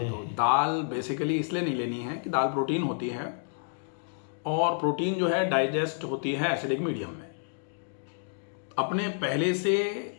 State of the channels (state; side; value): silent; right; digital silence